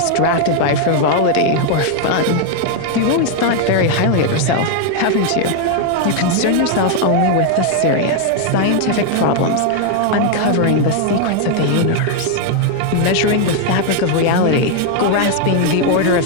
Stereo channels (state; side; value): different; both; correlation 0.00